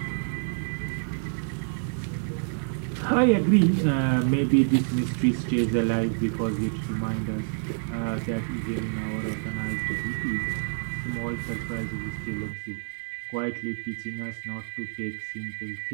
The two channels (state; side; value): silent; left; 60 dB below the other